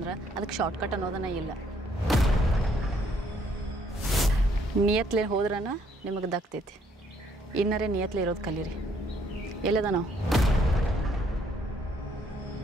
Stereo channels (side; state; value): both; normal; correlation 0.67